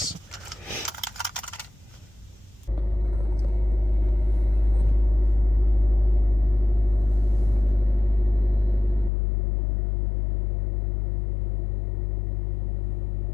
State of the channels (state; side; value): drops out; right; at 9.1 s